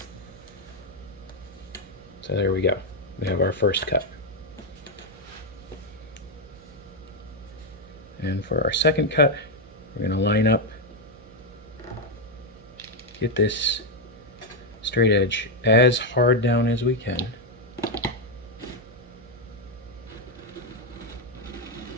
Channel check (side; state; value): right; noise; hum, 23 dB below the sound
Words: So there we go. We have our first cut. And for our second cut, we're going to line up, get this straight edge as hard down as we can.